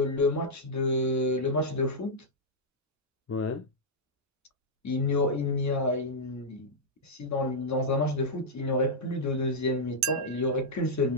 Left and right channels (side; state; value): both; normal; correlation -0.07